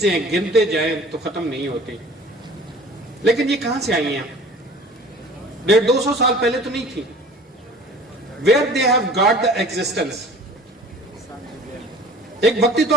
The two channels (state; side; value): normal; both; correlation 0.45